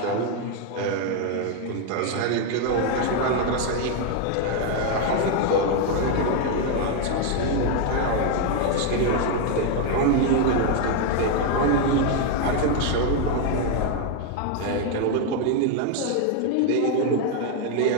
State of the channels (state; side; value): different; both; correlation 0.01